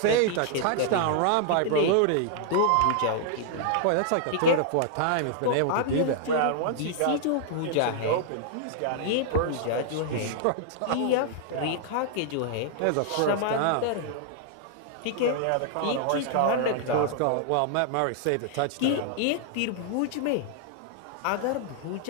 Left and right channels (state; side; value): different; both; correlation -0.01